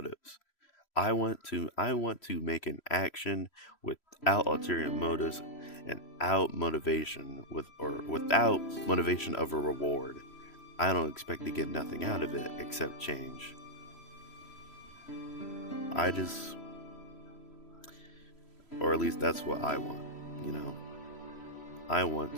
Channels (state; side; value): late; right; 3.0 ms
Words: I want to make an action without ulterior motives and without motivation of a reward. I don't expect to get nothing out of it except change. Or at least that's what I want, I